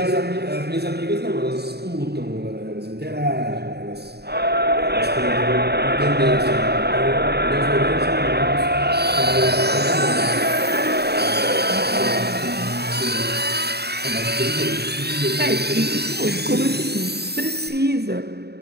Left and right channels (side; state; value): left; late; 0.48 ms